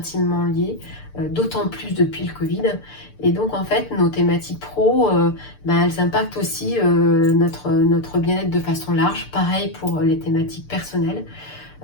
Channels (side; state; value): right; late; 6.8 ms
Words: liés, d'autant plus depuis le Covid. Et donc en fait, nos thématiques pro, elles impactent aussi notre bien-être de façon large. Pareil pour les thématiques personnelles.